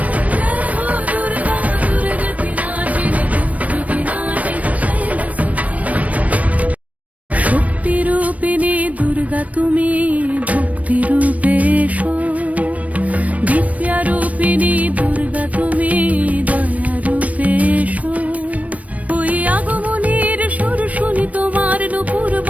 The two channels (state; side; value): late; left; 0.068 ms